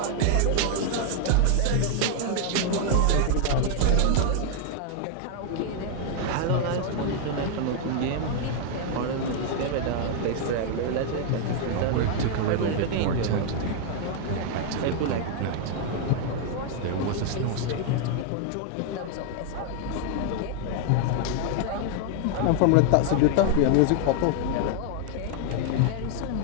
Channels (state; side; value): different; both; correlation 0.00